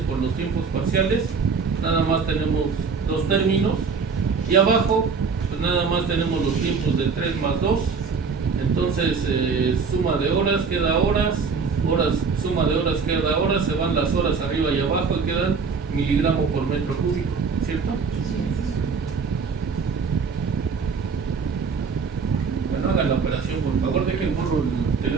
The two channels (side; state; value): left; quieter; 5.2 dB